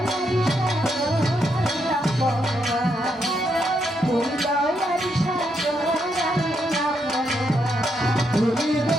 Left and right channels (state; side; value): normal; both; correlation 0.79